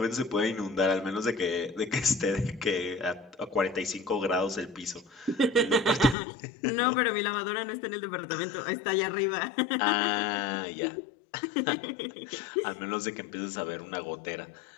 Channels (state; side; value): drops out; right; at 6.2 s